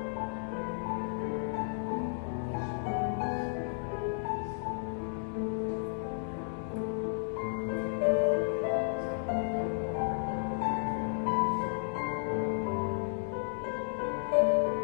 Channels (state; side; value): silent; right; digital silence